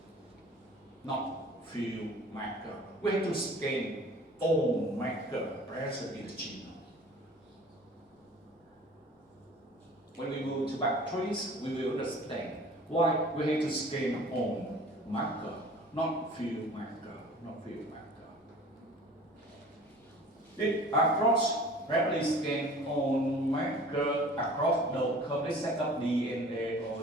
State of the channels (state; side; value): normal; both; correlation 0.45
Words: not few marker. We have to scan all marker present in the genome. When we move to bacteria, we will understand why we have to scan all marker, not few marker, not few marker. It across rapidly scan on marker across the complete set of DNA or